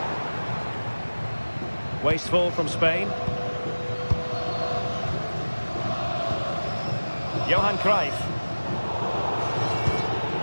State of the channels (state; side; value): inverted; both; correlation -1.00